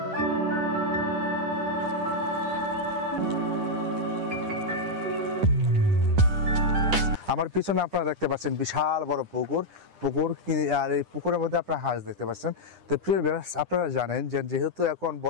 আমার পিছনে আপনারা দেখতে পাচ্ছেন বিশাল বড় পুকুর, আর এই পুকুরের মধ্যে আপনারা হাঁস দেখতে পাচ্ছেন। তো প্রিয় ভিউয়ার্স, আপনারা জানেন যে যেহেতু এখন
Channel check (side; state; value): left; late; 10 ms